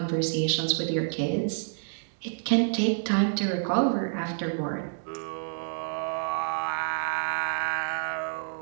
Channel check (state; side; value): silent; left; digital silence